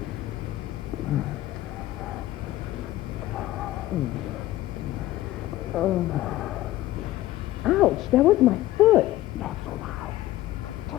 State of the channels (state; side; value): quieter; right; 15.7 dB